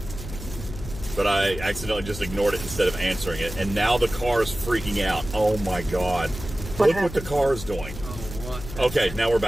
but I accidentally just ignored it instead of answering it, and now the car is freaking out. Oh my God. Look what the car is doing. Oh, what? Okay, now we're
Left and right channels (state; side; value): noise; left; hum, 11 dB below the sound